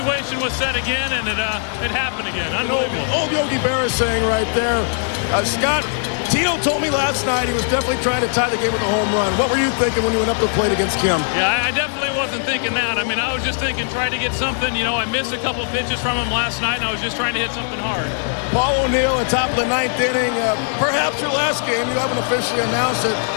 was set again, and it happened again. Unbelievable. Old Yogi Berra saying right there. Scott, Tino told me last night he was definitely trying to tie the game with a home run. What were you thinking when you went up to the plate against Kim? Yeah, I definitely wasn't thinking that. I mean, I was just thinking, try to get something. You know, I missed a couple of pitches from him last night, and I was just trying to hit something hard. Paul O'Neill at top of the 9th inning. Perhaps your last game, you haven't officially announced it.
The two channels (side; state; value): right; silent; digital silence